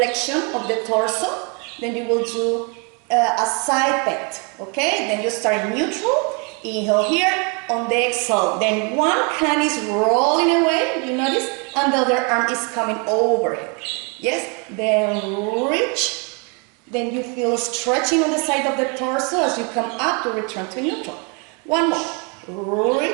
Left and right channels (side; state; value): left; quieter; 34.4 dB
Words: of the torso. Then you will do a side bend, okay? Then you start neutral. Inhale here. On the exhale. Then one hand is rolling away, you notice? And the other arm is coming overhead. Yes? Then reach. Then you feel stretching on the side of the torso as you come up to return to neutral. One more.